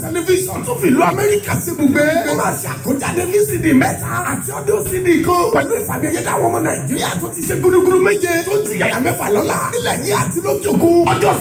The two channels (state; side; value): identical; both; correlation 1.00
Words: tẹlifíṣàn tó fi ìlú Amẹ́ríkà sí ibùgbé ó máa ṣe àkójáde VCD mẹ́ta àti ọdún CD kan pẹ̀lú ìfàmìyẹ́dá àwọn ọmọ Nàìjíríà tó ti ṣe gúdúgúdú méje tó ti yàyà mẹ́fà lọ́la nílẹ̀ yìí àti lókè òkun ọjọ́